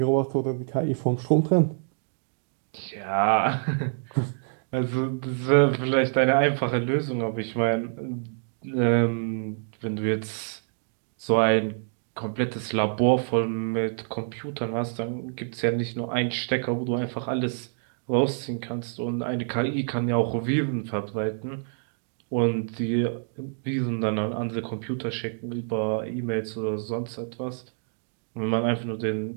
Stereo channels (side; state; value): left; silent; digital silence